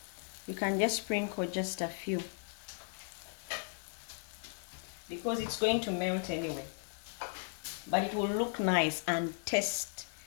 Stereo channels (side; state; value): right; silent; 53 dB below the other